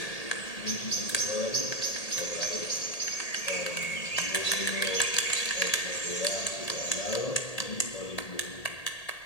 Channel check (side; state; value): right; late; 1.8 ms